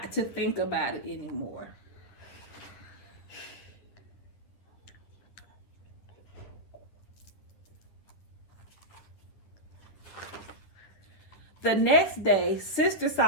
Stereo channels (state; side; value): late; right; 10 ms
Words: to think about it anymore. The next day, Sister